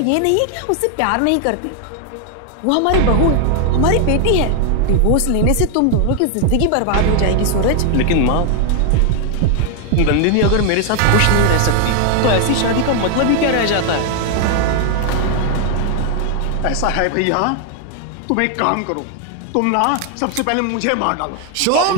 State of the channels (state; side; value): different; both; correlation 0.00